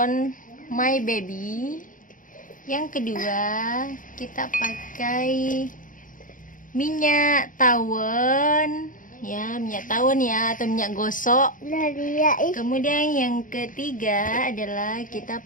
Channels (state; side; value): late; right; 0.39 ms